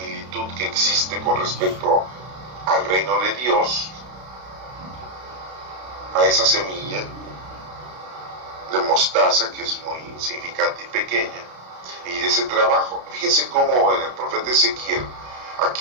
que existe con respecto al reino de Dios, a esa semilla de mostaza que es muy insignificante y pequeña, y de ese trabajo. Fíjense cómo en el profeta Ezequiel,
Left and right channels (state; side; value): late; left; 32 ms